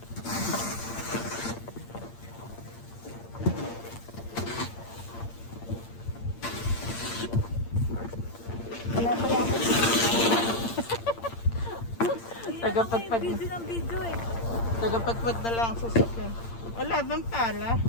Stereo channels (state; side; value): late; right; 8.7 ms